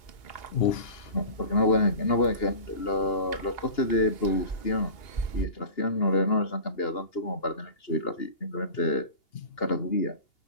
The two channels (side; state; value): right; late; 2.8 ms